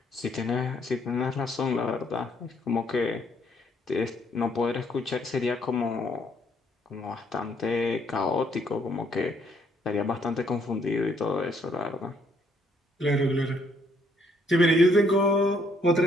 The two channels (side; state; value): both; normal; correlation 0.69